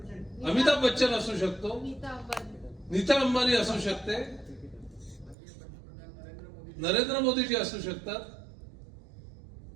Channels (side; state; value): left; drops out; at 5.4 s